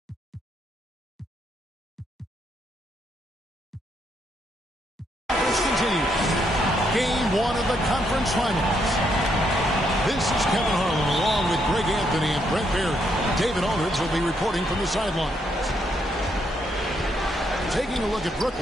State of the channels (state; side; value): normal; both; correlation 0.75